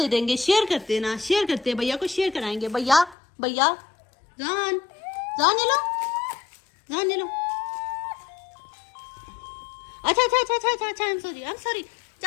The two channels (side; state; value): right; drops out; at 3.2 s